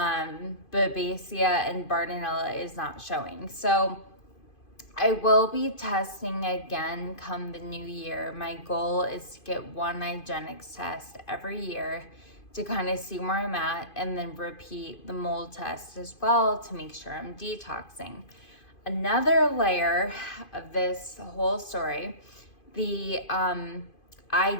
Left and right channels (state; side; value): late; right; 2.5 ms